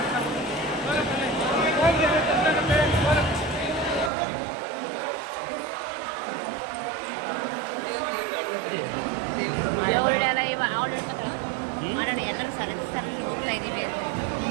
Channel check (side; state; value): left; drops out; at 4.1 s